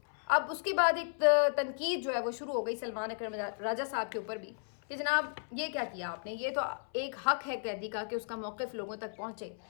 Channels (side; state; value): right; silent; 55 dB below the other